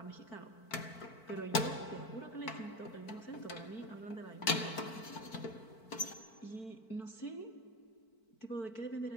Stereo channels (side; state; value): right; late; 4.5 ms